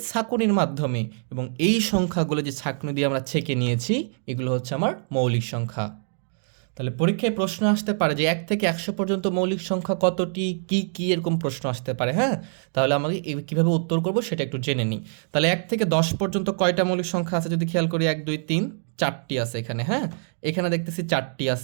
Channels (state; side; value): silent; left; digital silence